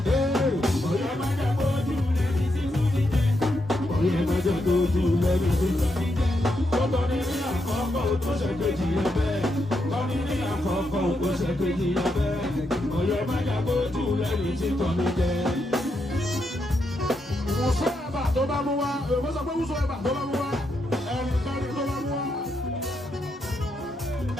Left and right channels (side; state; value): both; normal; correlation 0.82